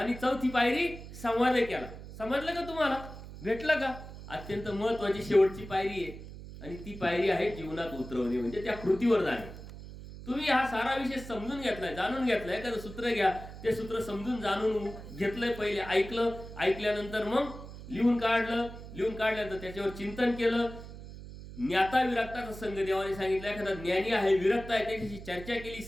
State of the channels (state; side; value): noise; right; hum, 13 dB below the sound